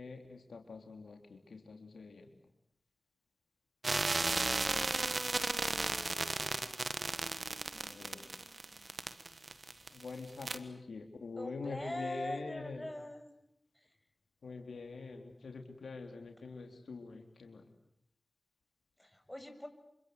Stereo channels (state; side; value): normal; both; correlation 0.96